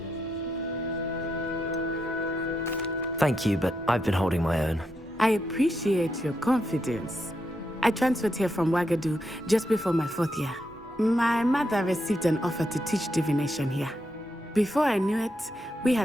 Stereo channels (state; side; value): normal; both; correlation 0.82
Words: Thank you, but I've been holding my own. I appreciate your confidence. I transferred here from Wagadu just before my 4th year. My mother received an offer to teach divination here. Before I knew it, we